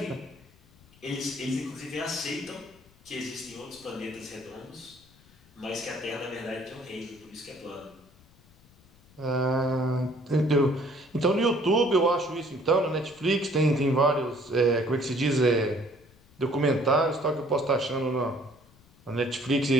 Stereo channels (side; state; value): left; noise; rumble, 28 dB below the sound